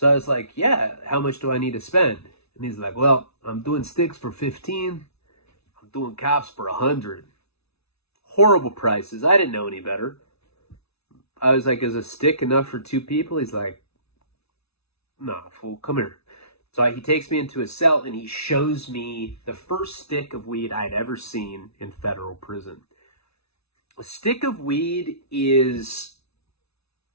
I was like, yeah, how much do I need to spend? And he's like, well, I'm doing sticks for 15. I'm doing cops for 100. Horrible prices. I didn't know any better. I was like, is a stick enough for 2 people? He's like, nah, fool, come here. So he takes me into a cell and he shows me the first stick of weed I'd ever seen in federal prison. A stick of weed is,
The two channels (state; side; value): late; right; 0.79 ms